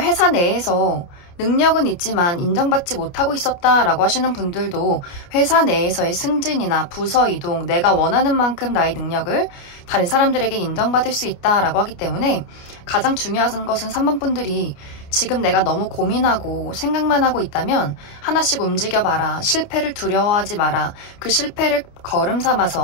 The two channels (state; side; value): late; right; 29 ms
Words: 내에서 능력은 있지만 인정받지 못하고 있었다라고 하시는 분들도 회사 내에서의 승진이나 부서 이동, 내가 원하는 만큼 나의 능력을 다른 사람들에게 인정받을 수 있다라고 하기 때문에 가장 중요한 것은 3번 분들이 지금 내가 너무 고민하고 생각만 하고 있다면 하나씩 움직여봐라. 실패를 두려워하지 마라. 그 실패를 걸음